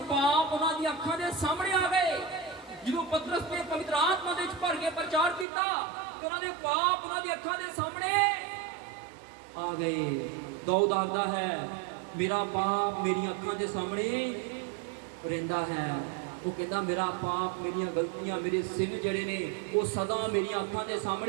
पाप उन्होंने अखां के सामने आ गए। जो पतरस ने पवित्र आत्मा दे भर के प्रचार किया, उन्होंने पाप उन्होंने अखां के सामने आ गए। दाऊद आखदा है, मेरा पाप मेरी अखां के सामने रहिंदा है। वो कहता, मेरा पाप, मेरी गलतियां, मेरे सिन जिहड़े ने वो सदा मेरी अखां के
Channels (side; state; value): left; drops out; at 5.5 s